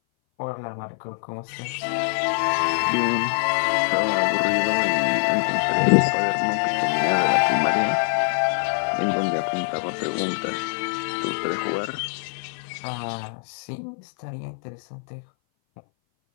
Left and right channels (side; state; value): right; silent; 59 dB below the other